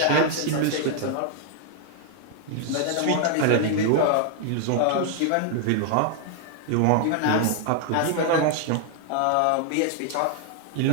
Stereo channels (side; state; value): both; different; correlation 0.00